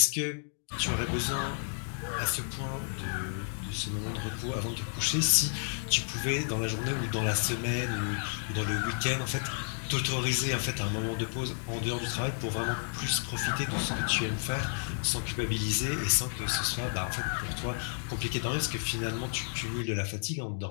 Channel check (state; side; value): silent; right; digital silence